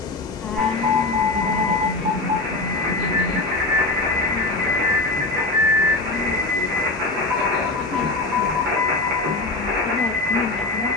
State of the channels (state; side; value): quieter; right; 3.1 dB